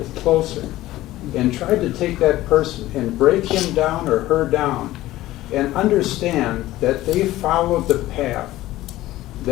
closer and tried to take that person and break him down or her down and understand that they followed the path,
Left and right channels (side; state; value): right; quieter; 16.0 dB